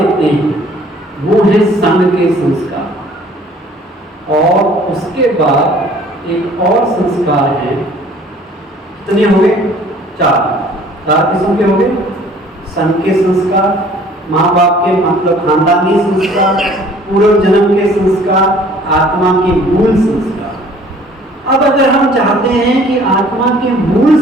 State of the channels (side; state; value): both; normal; correlation 0.54